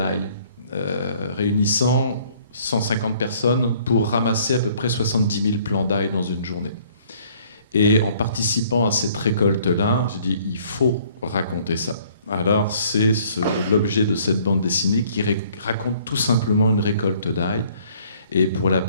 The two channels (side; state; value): both; inverted; correlation -0.59